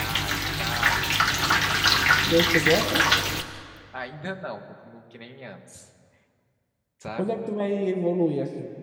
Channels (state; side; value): identical; both; correlation 1.00